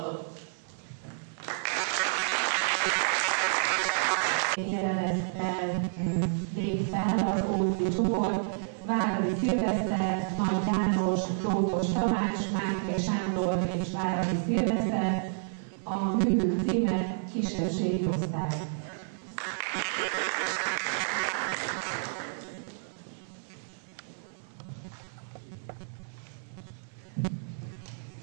Jelenettel lép fel az Ózdi csoport, Váradi Szilveszter, Nagy János, Lótos Tamás, Máté Sándor és Váradi Szilveszter, a művük címe Kisebbségi osztály.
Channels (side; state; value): left; silent; 58 dB below the other